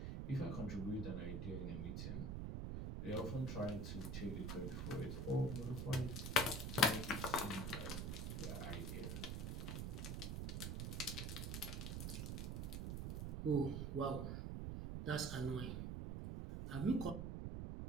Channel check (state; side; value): noise; right; rumble, 2 dB below the sound